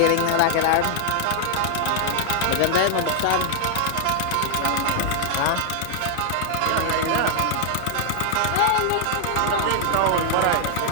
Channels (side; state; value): both; different; correlation 0.00